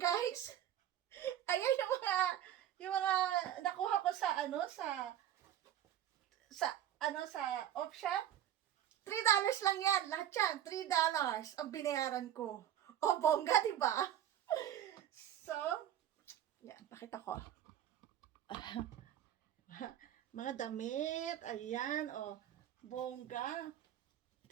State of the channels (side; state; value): left; quieter; 11.1 dB